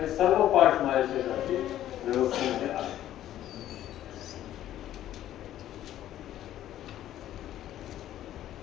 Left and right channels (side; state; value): right; quieter; 12.5 dB